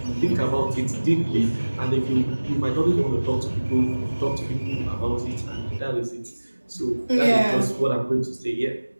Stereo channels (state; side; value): inverted; both; correlation -1.00